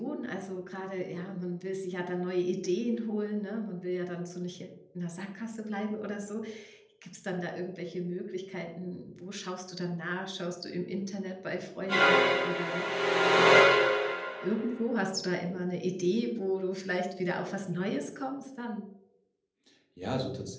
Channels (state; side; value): identical; both; correlation 1.00